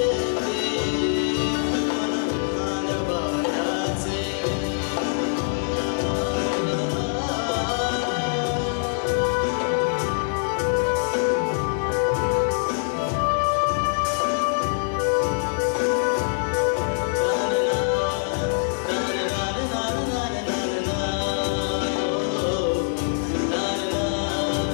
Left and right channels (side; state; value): right; silent; 63 dB below the other